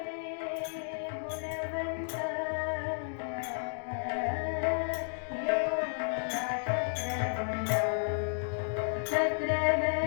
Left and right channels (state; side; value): silent; right; digital silence